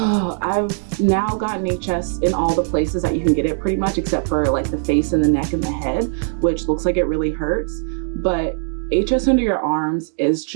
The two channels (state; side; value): silent; left; 66 dB below the other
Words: now gotten HS in all the places that you can get it pretty much, except for like the face and the neck and the head, which looks like it really hurts. But HS under your arms is